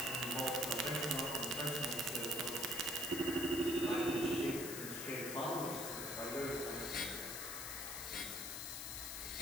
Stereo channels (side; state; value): left; noise; hiss, 5 dB below the sound